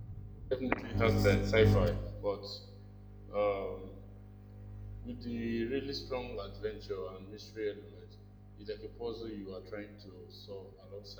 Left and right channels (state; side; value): identical; both; correlation 1.00